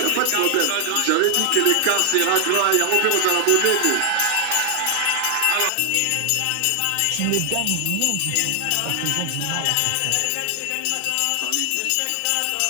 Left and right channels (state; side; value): different; both; correlation 0.00